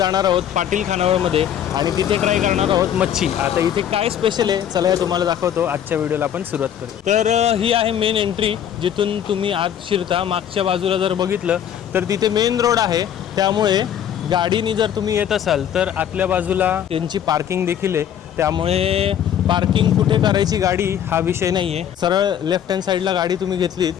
आहोत पाटील खानावळमध्ये आणि तिथे ट्राय करणार आहोत मच्छी. आता इथे काय स्पेशल आहे चला हे तुम्हाला दाखवतो. आजच्या व्हिडिओला आपण सुरुवात करू. तर ही आहे मेन एंट्री जिथून तुम्ही आत शिरता. मागच्या बाजूला जर बघितलं तर तिथे मेन रोड आहे, त्यामुळे गाडीनी जर तुम्ही येत असाल तर आतल्या बाजूला त्यांची पार्किंग देखील आहे. त्यामुळे पार्किंग कुठे करायची गाडी हा विषय नाही आहे. सरळ लेफ्ट हँड साईडला गाडी तुम्ही घेतलीत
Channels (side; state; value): right; quieter; 9.7 dB